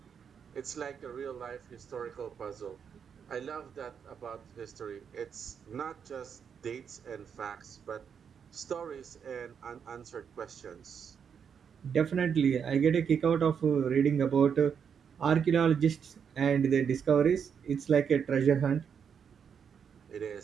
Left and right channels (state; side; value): quieter; left; 7.2 dB